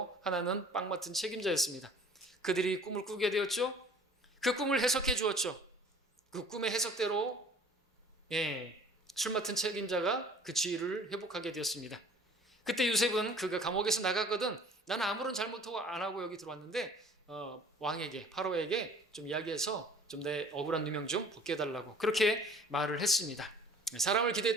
하나는 빵 맡은 책임자였습니다. 그들이 꿈을 꾸게 되었죠. 그 꿈을 해석해 주었죠. 그 꿈의 해석대로 술 맡은 책임자가 그 지위를 회복하게 되었습니다. 그때 요셉은 그가 감옥에서 나갔거든 나는 아무런 잘못도 안 하고 여기 들어왔는데 왕에게 파로에게 좀 이야기해서 좀 내 억울한 누명 좀 벗게 해달라고 그렇게 말을 했습니다. 사람을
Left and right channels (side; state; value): both; normal; correlation 0.49